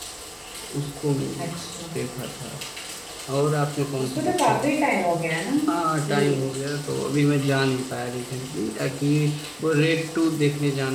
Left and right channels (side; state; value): both; identical; correlation 1.00